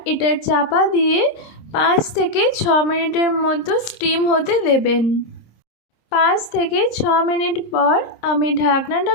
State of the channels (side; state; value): right; late; 26 ms